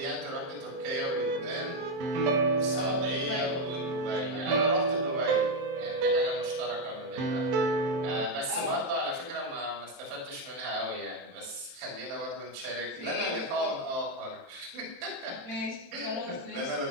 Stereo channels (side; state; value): left; late; 23 ms